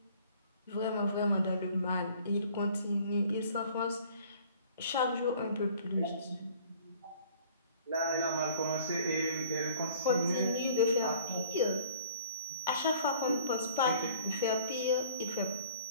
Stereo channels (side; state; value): both; inverted; correlation -0.52